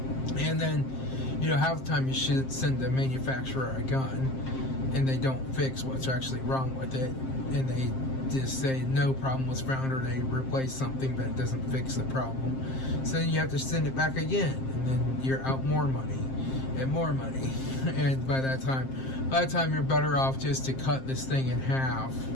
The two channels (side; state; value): right; late; 7.6 ms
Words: And then half the time you should send the manufacturer a gun, and they don't fix what's actually wrong with it, and they just say no problem was found, or they replace something but it doesn't fix the problem. So then you have to send it back again, and then you're out more money and more money. And by that time you're better off just to cut this thing in half